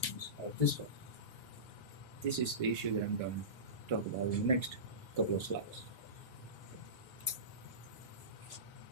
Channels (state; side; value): late; right; 1.7 ms